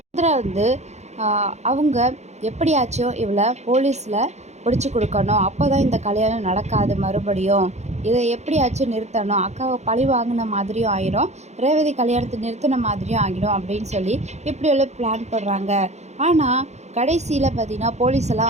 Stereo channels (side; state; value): left; late; 0.33 ms